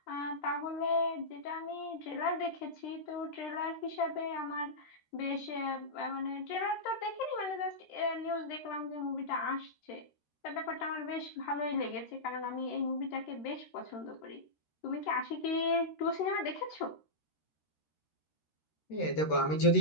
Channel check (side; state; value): right; late; 13 ms